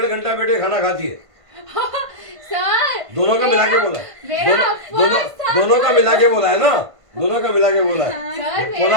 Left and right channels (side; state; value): left; late; 1.5 ms